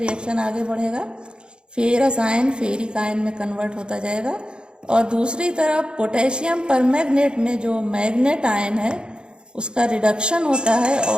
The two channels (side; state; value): left; late; 0.051 ms